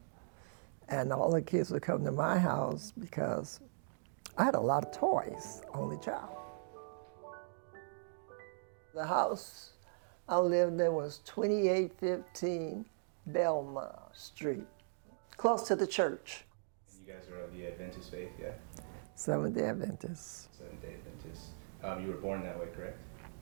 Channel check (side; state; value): left; silent; digital silence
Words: And all the kids would come to my house because I had a lot of toys, only child. The house I lived in was 2815 Belmont Street, close to the church. You guys are of the Adventist faith, yeah? Seventh-day Adventist. Seventh-day Adventist. You were born that way, correct?